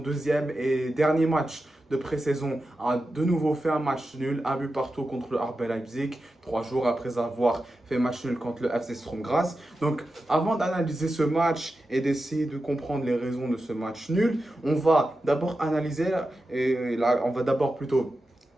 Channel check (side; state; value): both; normal; correlation 0.91